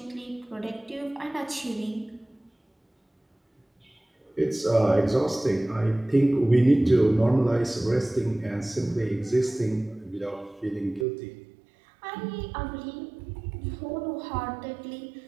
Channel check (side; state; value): left; drops out; at 11.1 s